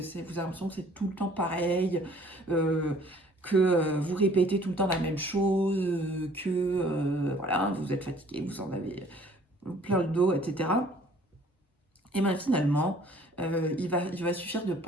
avez l'impression que c'est tout le temps pareil, que vous répétez tout le temps la même chose, voilà, vous êtes fatigué, vous en avez plein le dos, etc. Et bien finalement, il va suffire de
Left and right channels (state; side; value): normal; both; correlation 0.55